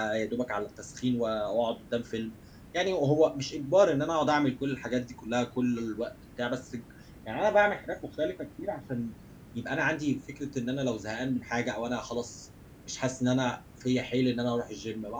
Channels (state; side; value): identical; both; correlation 1.00